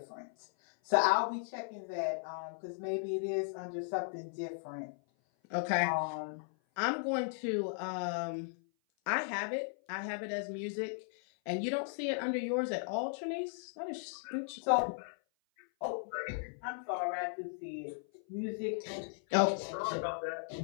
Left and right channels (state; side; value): silent; right; 53 dB below the other